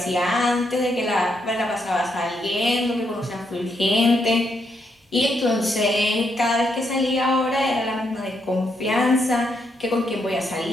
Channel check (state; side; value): normal; both; correlation 0.78